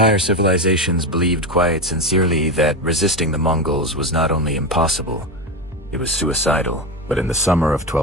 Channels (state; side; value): normal; both; correlation 0.16